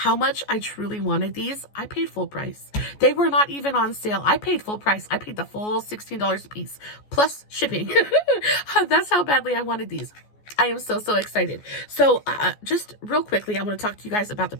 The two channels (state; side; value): late; right; 14 ms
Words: much I truly wanted these, I paid full price. They were not even on sale. I paid full price. I paid the full $16 a piece, plus shipping. That's how badly I wanted these. I am so, so excited. So just real quickly, I want to talk to you guys about the